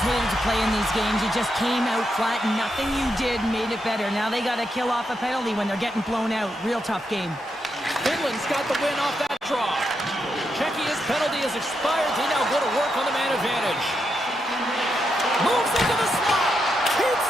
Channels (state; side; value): normal; both; correlation 0.83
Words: hated to play in these games. You just came out flat, and nothing you did made it better. Now they got to kill off a penalty when they're getting blown out. Real tough game. Finland's got the win off that draw. Czechya's penalty has expired. They now go to work on the man advantage. Moves into the slot. Keeps